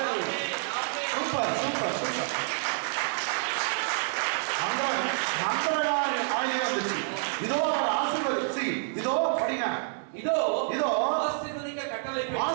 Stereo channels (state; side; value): silent; left; 59 dB below the other